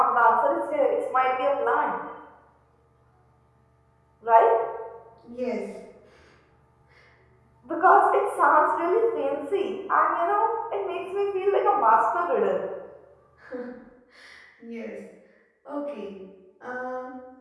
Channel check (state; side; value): identical; both; correlation 1.00